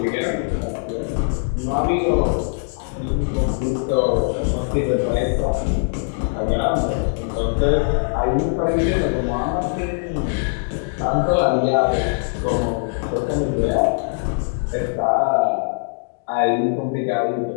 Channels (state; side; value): silent; right; digital silence